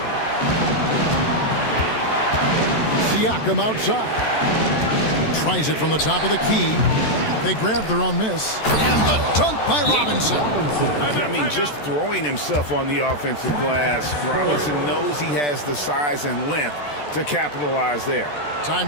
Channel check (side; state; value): right; late; 14 ms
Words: Siakam outside. Tries it from the top of the key. They grab their own miss. And the dunk by Robinson. I mean, just throwing himself on the offensive glass. Robinson knows he has the size and length to capitalize there. Time